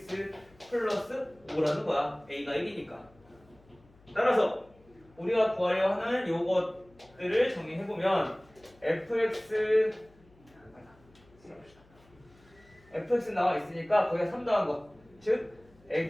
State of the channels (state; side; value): noise; left; hum, 28 dB below the sound